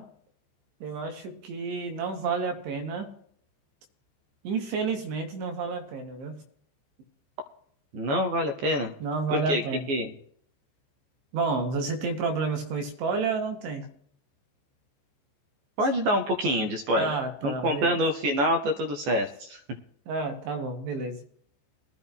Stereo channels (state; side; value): late; left; 14 ms